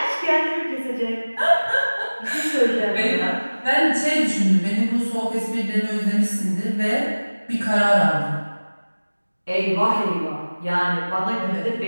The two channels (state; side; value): inverted; both; correlation -1.00